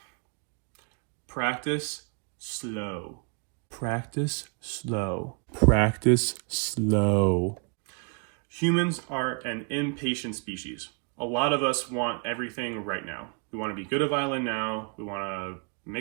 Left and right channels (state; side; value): quieter; left; 37.0 dB